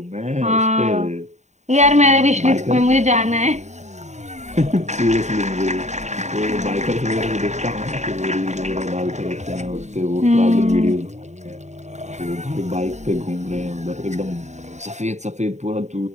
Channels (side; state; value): left; late; 0.34 ms